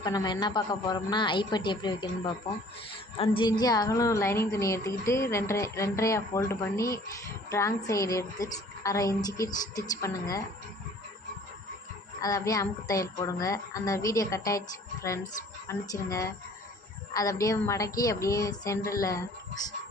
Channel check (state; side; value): normal; both; correlation 0.52